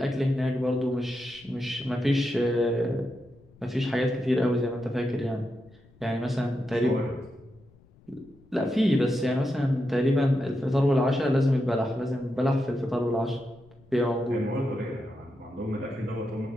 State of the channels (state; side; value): noise; left; rumble, 28 dB below the sound